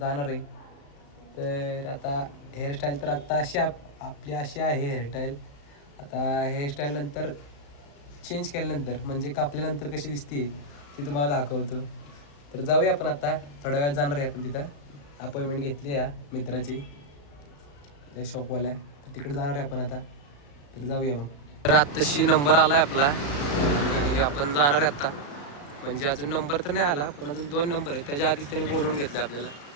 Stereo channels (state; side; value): late; right; 35 ms